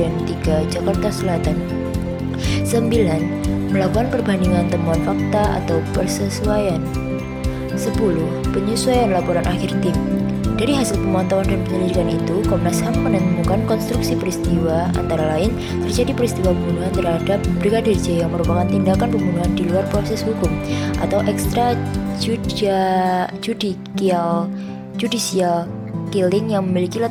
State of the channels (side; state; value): both; identical; correlation 1.00